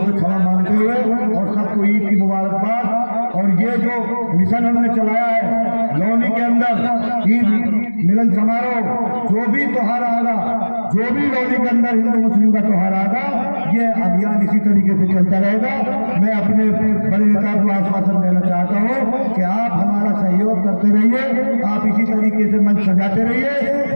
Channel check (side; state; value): both; inverted; correlation -1.00